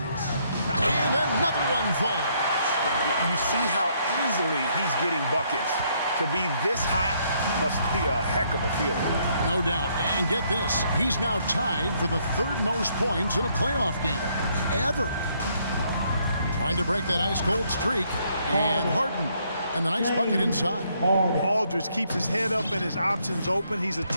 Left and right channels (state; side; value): inverted; both; correlation -0.70